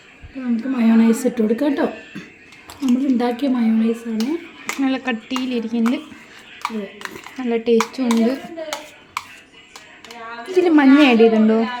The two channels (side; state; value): both; identical; correlation 1.00